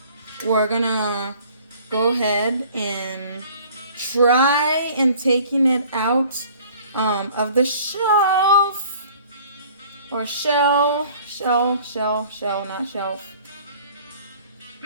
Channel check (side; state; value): both; inverted; correlation -0.51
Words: we're gonna go ahead and try and taking it out of the shelf, or shell, not shelf.